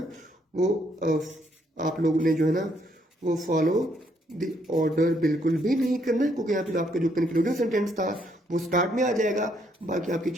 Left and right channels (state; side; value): normal; both; correlation 0.71